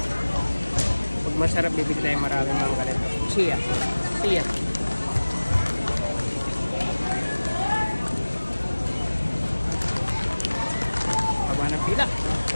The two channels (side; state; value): both; inverted; correlation -1.00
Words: Pag masarap, bibig tayo maraming mga ganito. Chia. Haba ng pila.